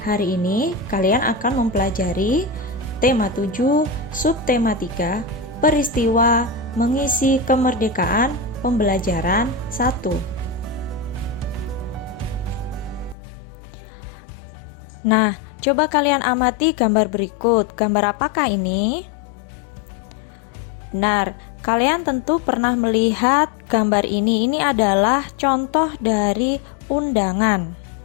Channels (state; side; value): drops out; right; at 13.2 s